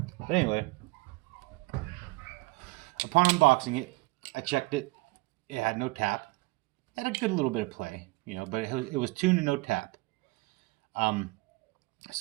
But anyway, upon unboxing it, I checked it. It had no tap. It had a good little bit of play, but it was tuned to no tap.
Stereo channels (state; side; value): quieter; left; 23.2 dB